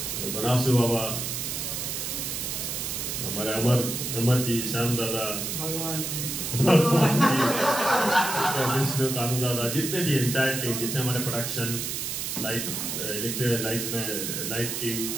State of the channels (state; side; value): noise; right; hiss, 3 dB below the sound